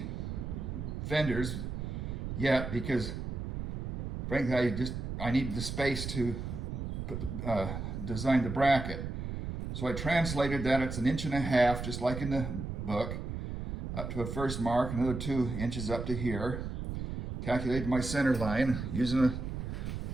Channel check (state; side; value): noise; right; rumble, 5 dB below the sound